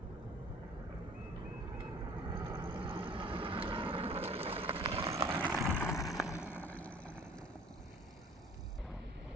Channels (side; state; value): both; normal; correlation 0.49